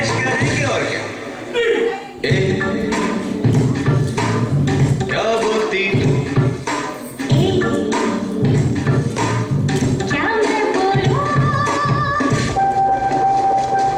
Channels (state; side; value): identical; both; correlation 1.00